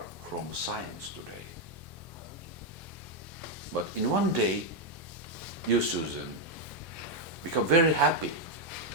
from science today. But in one day, you, Susan, become very happy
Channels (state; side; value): normal; both; correlation 0.02